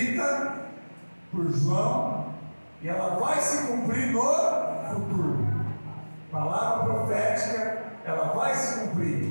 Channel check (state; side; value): inverted; both; correlation -1.00